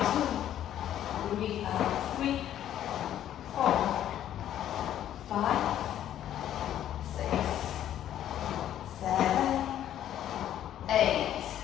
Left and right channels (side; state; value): right; quieter; 11.3 dB